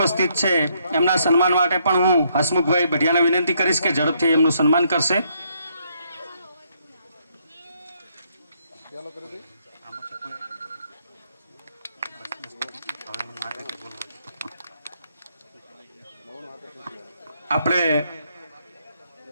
છે। એમના સન્માન માટે પણ હું હસમુખભાઈ બઢિયાને વિનંતી કરીશ કે ઝડપથી એમનું સન્માન કરશે। આપણે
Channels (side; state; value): both; inverted; correlation -0.72